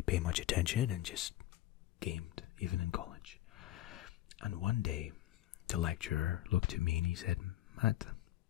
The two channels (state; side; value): quieter; right; 14.7 dB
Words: pay much attention and just gamed, even in college. And one day, the lecturer looked at me and he said, Matt,